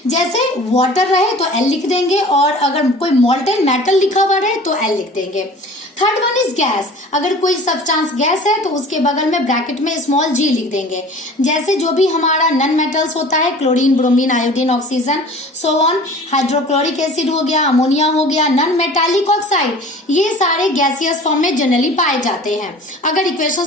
जैसे वाटर रहे तो एल लिख देंगे और अगर कोई मोल्टेन मेटल लिखा हुआ रहे तो एल लिख देंगे। थर्ड वन इज गैस, अगर कोई सब्सटेंस गैस है तो उसके बगल में ब्रैकेट में स्मॉल जी लिख देंगे। जैसे जो भी हमारा नन मेटल्स होता है, chlorine, bromine, iodine, oxygen, so on, hydrochloric acid हो गया, अमोनिया हो गया, नन मेटालिक ऑक्साइड, ये सारे गैसियस फॉर्म में जनरली पाए जाते हैं अगर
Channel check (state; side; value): normal; both; correlation 0.43